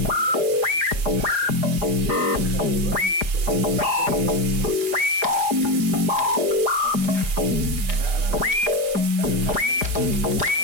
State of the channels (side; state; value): left; late; 4.9 ms